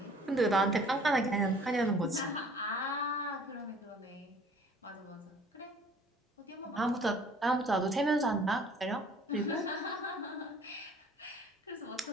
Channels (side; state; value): both; normal; correlation 0.53